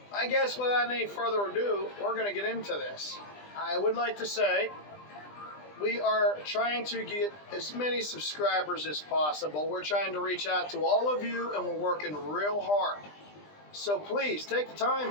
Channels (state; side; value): late; right; 20 ms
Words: I guess without any further ado, we're going to get into this. I would like to say we are trying to get as many subscribers as possible. We're trying to reach out to all of you, and we're working real hard. So please take the time